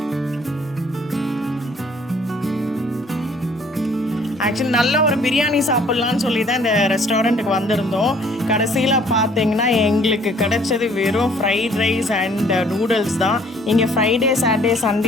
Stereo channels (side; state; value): both; normal; correlation 0.59